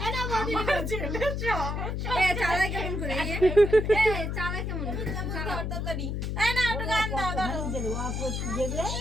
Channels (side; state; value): left; noise; hum, 2 dB below the sound